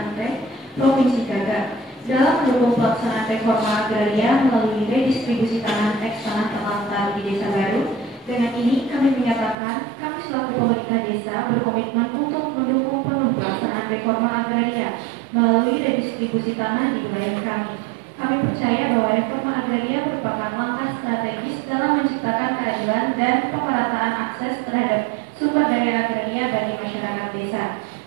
Provinsi Gaga, dalam mendukung pelaksanaan reforma agraria melalui redistribusi tanah tanah Telantar di Desa Baru. Dengan ini kami menyatakan kami selaku pemerintah desa berkomitmen untuk mendukung penuh pelaksanaan reforma agraria melalui redistribusi tanah di wilayah kami. Kami percaya bahwa reforma agraria merupakan langkah strategis dalam menciptakan keadilan dan pemerataan akses terhadap sumber daya agraria bagi masyarakat desa.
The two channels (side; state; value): left; drops out; at 9.6 s